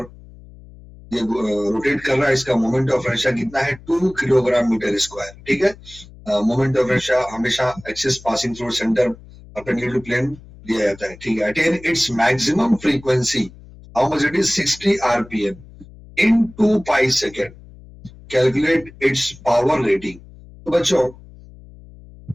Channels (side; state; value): left; noise; hum, 21 dB below the sound